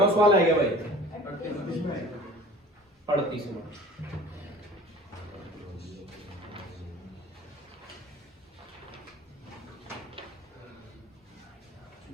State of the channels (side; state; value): both; normal; correlation 0.44